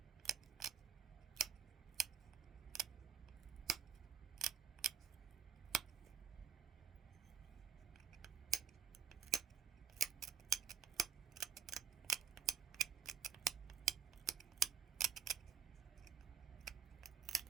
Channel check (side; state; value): left; quieter; 7.3 dB